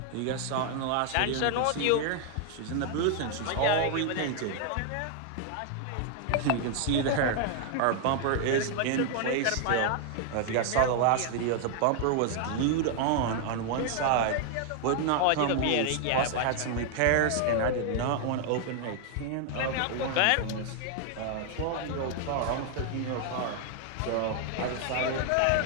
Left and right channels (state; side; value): different; both; correlation 0.00